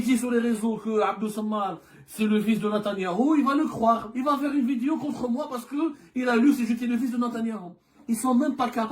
sur les réseaux que Abdou Sammar, c'est le fils de Netanyahou, il va le croire. Il va faire une vidéo contre moi parce que il a lu si j'étais le fils de Netanyahou. Ils sont même pas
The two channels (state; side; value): identical; both; correlation 1.00